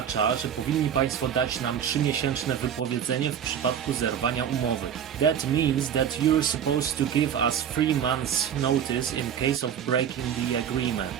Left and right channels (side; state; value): left; quieter; 8.8 dB